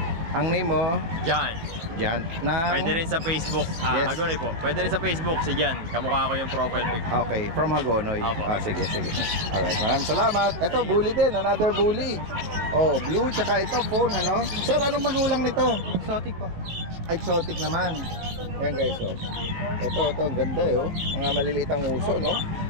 Ang name mo? Jan. Jan. Na... Pwede rin sa Facebook. Yes. Hagonoy po. Pwede rin sa Facebook si Jan. Kamukha ko yung profile pic. Okay, from Hagonoy. Apo. Sige, sige. Alright, maraming salamat. Ito, bully din. Another bully. Oh, blue, tsaka ito, phone, ano? Sir, anong magulang nito? Exotic po. Exotic naman. Ayan guys, oh. Ito, ang ganda eh, oh. Mga maliliit ang uso, no?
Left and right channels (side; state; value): left; late; 18 ms